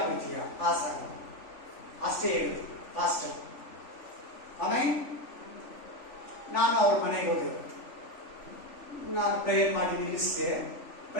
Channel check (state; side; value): late; right; 3.5 ms